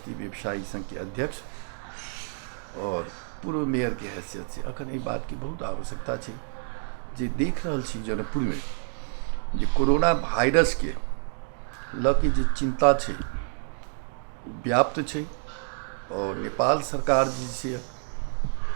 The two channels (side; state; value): left; silent; digital silence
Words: व्यवसायी संघ के अध्यक्ष और पूर्व मेयर के हैसियत से अखन एहि बात की बहुत आवश्यकता छै जे देख रहल छी जनकपुर में जे कोरोना वायरस के लऽ के जे चिंता छै व्याप्त छै और नेपाल सरकार जे